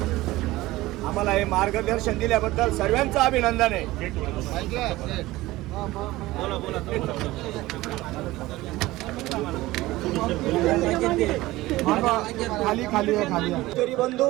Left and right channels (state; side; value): quieter; left; 18.2 dB